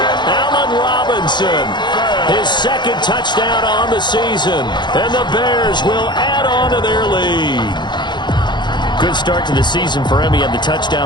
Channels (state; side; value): late; right; 0.21 ms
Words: Allen Robinson. His 2nd touchdown on the season. And the Bears will add on to their lead. Good start to the season for him. He had the